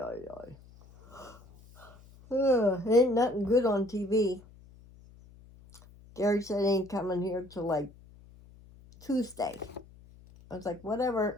yeah. Ain't nothing good on TV. Gary said he ain't coming here till like Tuesday. I was like,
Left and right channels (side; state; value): left; noise; hum, 23 dB below the sound